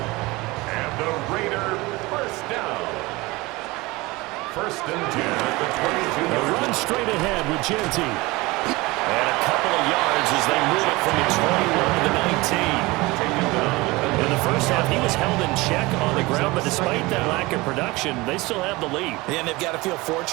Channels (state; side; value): quieter; left; 22.2 dB